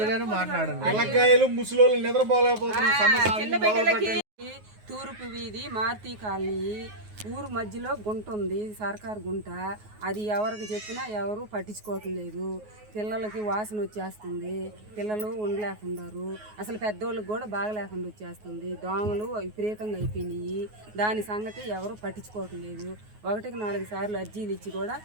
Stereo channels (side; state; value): left; late; 9.4 ms